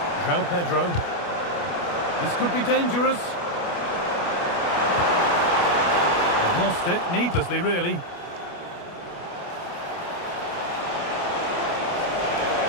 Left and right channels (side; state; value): right; late; 29 ms